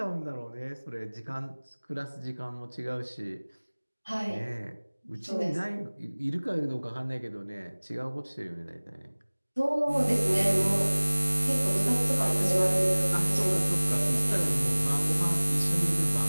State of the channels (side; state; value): both; inverted; correlation -1.00